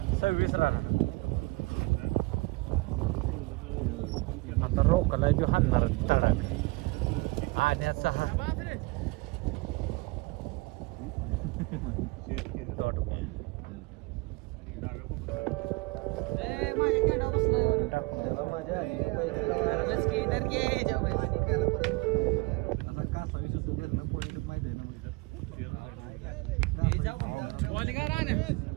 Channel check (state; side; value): quieter; left; 24.9 dB